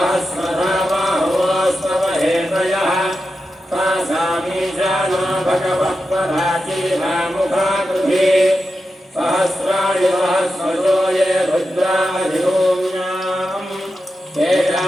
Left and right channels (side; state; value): both; normal; correlation 0.90